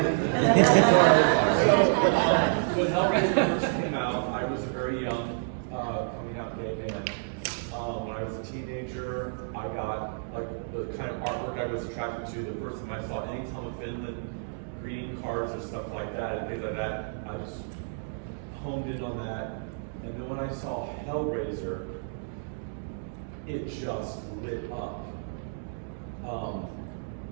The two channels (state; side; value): silent; left; digital silence